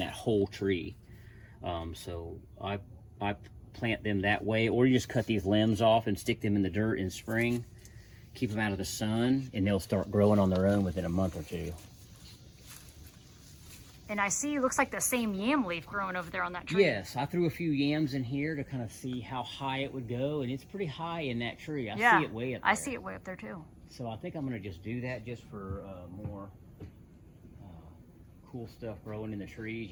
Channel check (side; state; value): both; identical; correlation 1.00